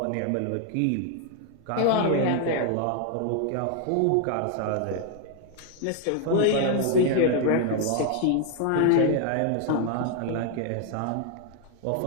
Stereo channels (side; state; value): both; different; correlation 0.00